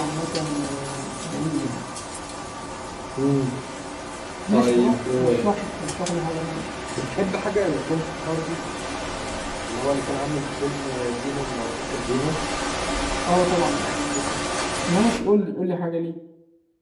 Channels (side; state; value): both; identical; correlation 1.00